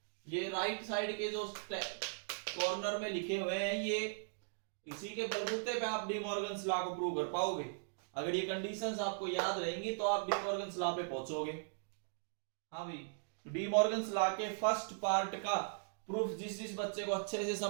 ये राइट साइड के जो कॉर्नर में लिखे हुए हैं, ये इसी के बलबूते पे आप डी मॉर्गन्स लॉ को प्रूव कर पाओगे। अगर ये कंडीशंस आपको याद रहेंगी तो आप डी मॉर्गन्स लॉ पे पहुंचोगे। हाँ भाई, डी मॉर्गन्स लॉ के फर्स्ट पार्ट का प्रूफ जिस जिस बच्चे को अच्छे से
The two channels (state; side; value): silent; left; digital silence